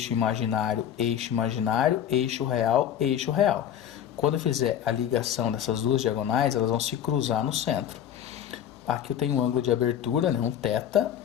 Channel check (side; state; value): right; quieter; 9.9 dB